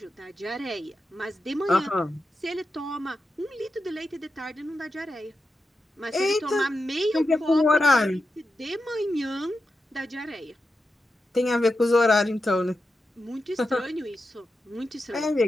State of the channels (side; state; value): both; normal; correlation 0.89